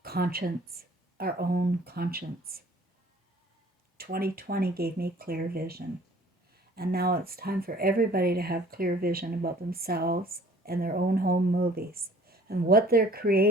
conscience, our own conscience. 2020 gave me clear vision. And now it's time for everybody to have clear vision about themselves and their own home movies and what they're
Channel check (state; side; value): normal; both; correlation 0.52